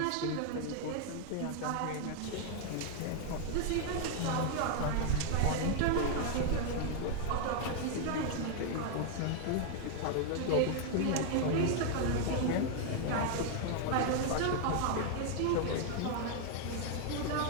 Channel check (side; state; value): both; different; correlation 0.00